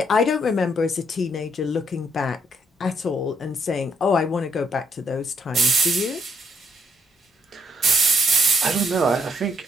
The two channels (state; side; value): normal; both; correlation 0.73